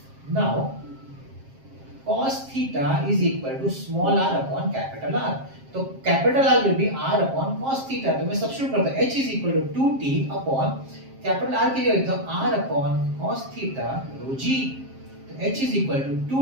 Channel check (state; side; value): late; left; 7.5 ms